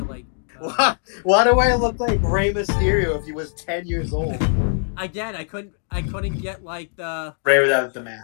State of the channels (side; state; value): right; silent; digital silence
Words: like. Why do I look like Rey Mysterio if he was 10 years old? Again, I couldn't get like the Ray without the